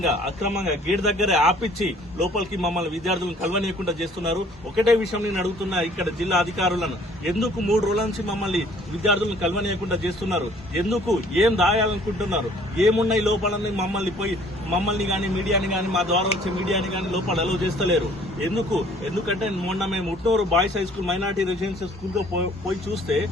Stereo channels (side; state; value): both; normal; correlation 0.56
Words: అక్రమంగా గేట్ దగ్గరే ఆపిచ్చి లోపలికి మమ్మల్ని విద్యార్థులను కలవనీయకుండా చేస్తున్నారు. ఒకటే విషయం నేను అడుగుతున్నా ఇక్కడ జిల్లా అధికారులను, ఎందుకు 3 రోజుల నుంచి మమ్మల్ని విద్యార్థులను కలవనీయకుండా చేస్తున్నారు? ఎందుకు ఏం దాయాలనుకుంటున్నారు? ఏమున్నాయి లోపలని మమ్మల్ని గాని మీడియాని గాని మా ద్వారా వచ్చే మీడియాని గాని లోపల అలౌ చేస్తలేరు. ఎందుకంటే మొన్న మేము Utnoor boys high school minority residential school లో పోయి చూస్తే